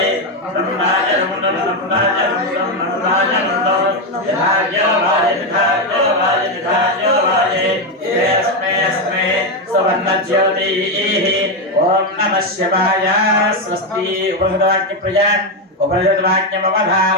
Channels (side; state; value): both; normal; correlation 0.07